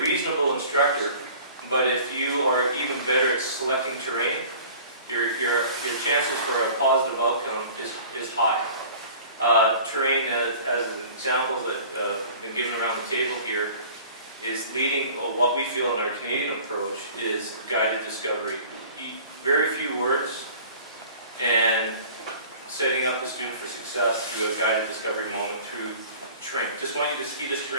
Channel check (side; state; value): both; inverted; correlation -0.46